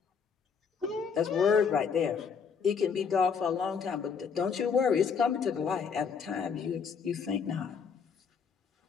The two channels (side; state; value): right; quieter; 6.2 dB